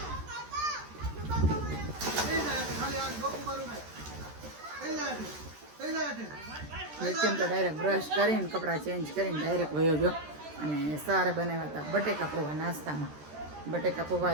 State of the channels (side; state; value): left; late; 13 ms